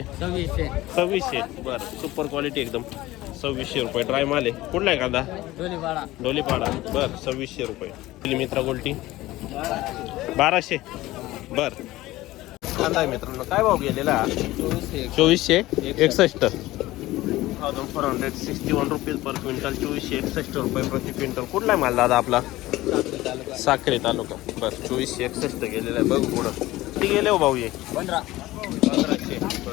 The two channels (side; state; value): right; quieter; 17.4 dB